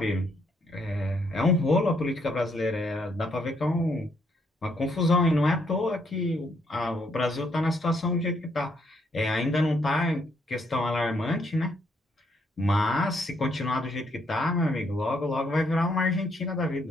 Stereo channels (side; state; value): both; normal; correlation 0.72